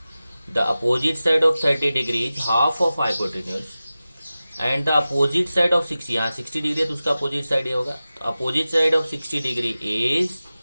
The opposite side of 30 degree is half of hypotenuse and the opposite side of 60, यहाँ 60 डिग्री है तो उसका अपोजिट साइड ये होगा। तो opposite side of 60 degree is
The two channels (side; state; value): both; inverted; correlation -0.95